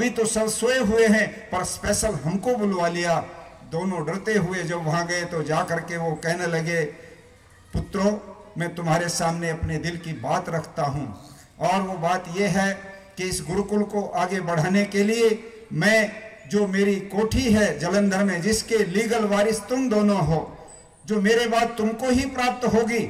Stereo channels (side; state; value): both; identical; correlation 1.00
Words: तो सब सोए हुए हैं पर स्पेशल हमको बुलवा लिया। दोनों डरते हुए जब वहां गए तो जा करके वो कहने लगे, पुत्रों मैं तुम्हारे सामने अपने दिल की बात रखता हूं, और वो बात यह है कि इस गुरुकुल को आगे बढ़ाने के लिए मैं, जो मेरी कोठी है जलंधर में, जिसके लीगल वारिस तुम दोनों हो, जो मेरे बाद तुमको ही प्राप्त होगी,